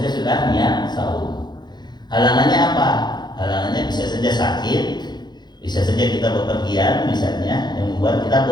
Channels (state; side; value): late; right; 0.21 ms